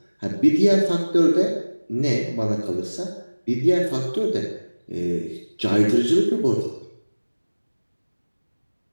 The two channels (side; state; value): both; inverted; correlation -1.00